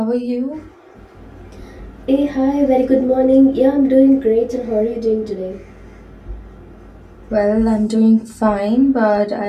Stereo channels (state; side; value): identical; both; correlation 1.00